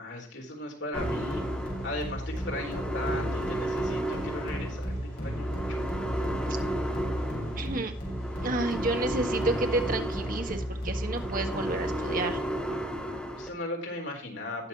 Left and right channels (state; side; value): normal; both; correlation 0.63